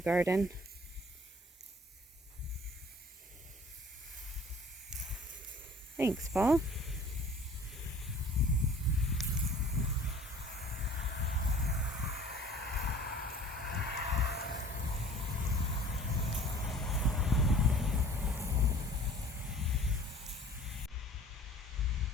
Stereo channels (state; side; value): normal; both; correlation 0.48